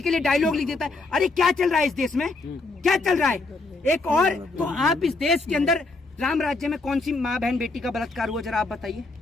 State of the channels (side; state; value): right; quieter; 3.4 dB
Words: के लिए डायलॉग लिख देता है। अरे क्या चल रहा है इस देश में, क्या चल रहा है? एक और तो आप इस देश के अंदर राम राज्य में कौन सी माँ बहन बेटी का बलात्कार हुआ, जरा आप बताइए,